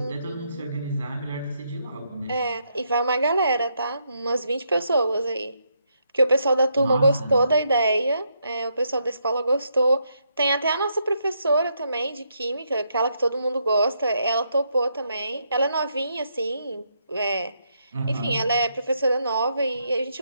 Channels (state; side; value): inverted; both; correlation -0.78